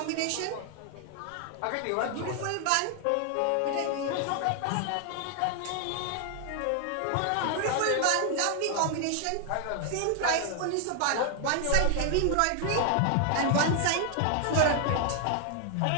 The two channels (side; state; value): both; different; correlation 0.00